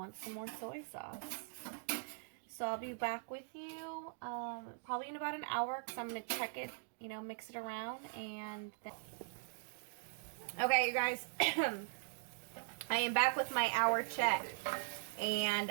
some more soy sauce. So I'll be back with you probably in about an hour, because I'm going to check it, you know, mix it around, and then... Okay, you guys, I am back with my hour check,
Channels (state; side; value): silent; left; digital silence